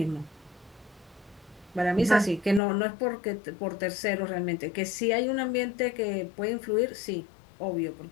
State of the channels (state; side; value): drops out; right; at 2.6 s